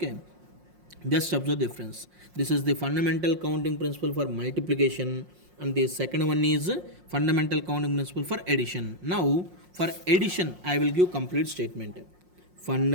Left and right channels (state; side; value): late; left; 5.6 ms